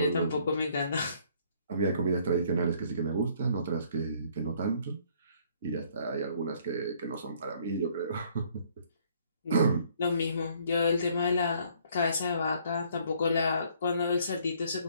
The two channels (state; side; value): inverted; both; correlation -0.62